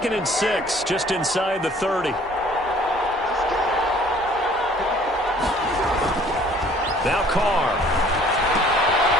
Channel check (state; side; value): normal; both; correlation 0.55